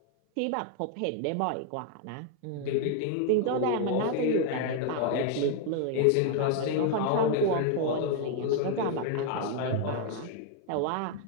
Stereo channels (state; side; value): different; both; correlation 0.00